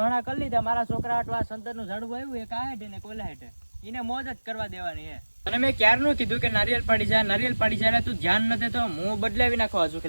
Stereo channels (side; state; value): both; inverted; correlation -1.00